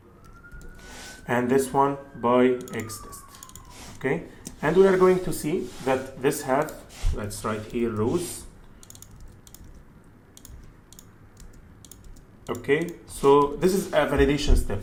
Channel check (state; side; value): identical; both; correlation 1.00